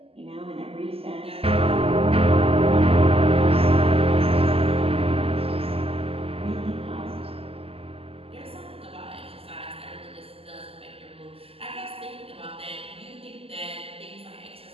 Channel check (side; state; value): left; late; 0.28 ms